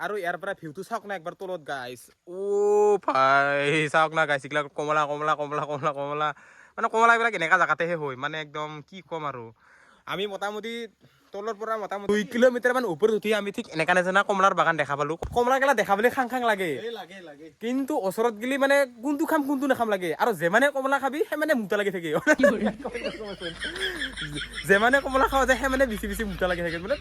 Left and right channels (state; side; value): identical; both; correlation 1.00